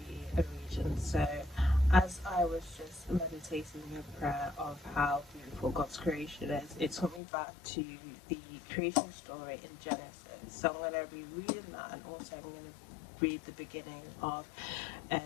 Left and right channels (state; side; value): drops out; right; at 7.2 s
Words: be a region. So, as I was just meditating in prayer of how beautiful God's creation is, it took me back to the creation story in Genesis. So, I'm going to be reading that, and also I'm going to read the beginning of